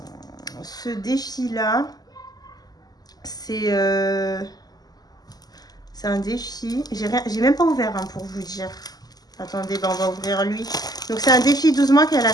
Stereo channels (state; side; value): late; right; 0.19 ms